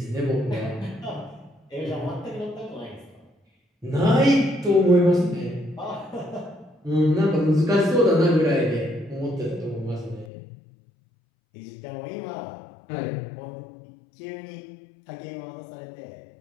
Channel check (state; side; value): drops out; right; at 10.3 s